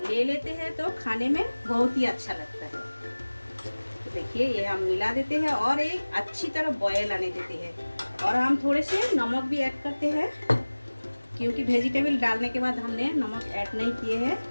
ले लेते हैं तो खाने में बहुत ही अच्छा लगता है। तो देखिए ये हम मिला देते हैं और एक अच्छी तरह बॉयल आने देते हैं। और हम थोड़े से नमक भी ऐड करते हैं, क्योंकि वेजिटेबल डालने के बाद हमने नमक ऐड नहीं किए हैं,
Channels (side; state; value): both; inverted; correlation -1.00